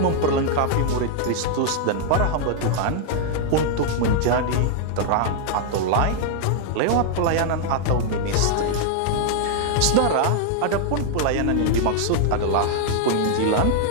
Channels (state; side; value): different; both; correlation 0.00